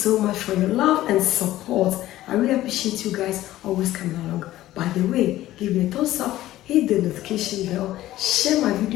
much for your love and support. I really appreciate you guys always coming along. By the way, give me a thumbs up, hit the notification bell, share my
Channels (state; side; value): quieter; right; 15.0 dB